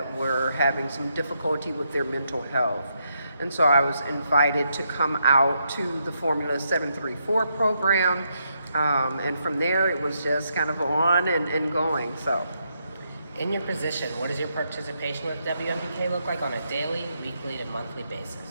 were having some difficulty with their mental health. And so I was invited to come out to the Formula 734 program. And from there, it was just kind of on and going. So. In your position, what does your participation with WMBK look like on a daily, weekly, and monthly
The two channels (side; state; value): both; inverted; correlation -0.79